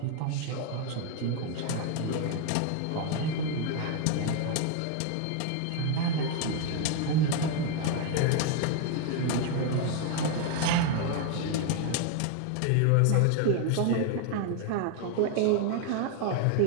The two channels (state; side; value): different; both; correlation 0.01